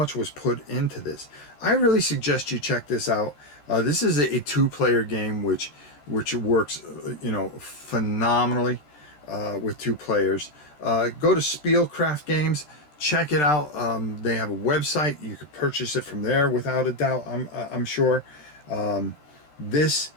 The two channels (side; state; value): right; late; 13 ms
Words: was put into this. I really suggest you check this out. This is a 2-player game which works phenomenally with 2 players. Go to Spielcraft Games, check it out. They have a website. You could purchase it from there without a doubt, I'm sure. This